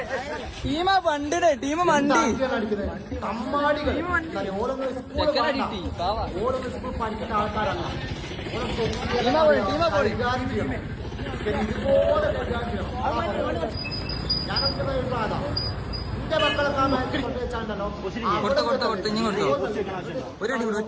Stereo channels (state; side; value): identical; both; correlation 1.00